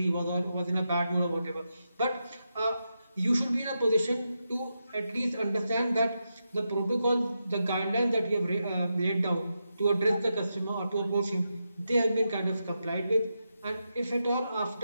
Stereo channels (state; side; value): inverted; both; correlation -0.86